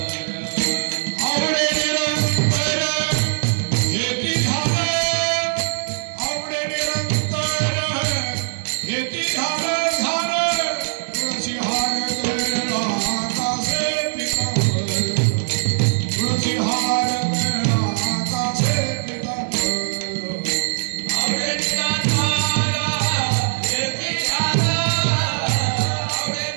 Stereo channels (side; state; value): left; silent; digital silence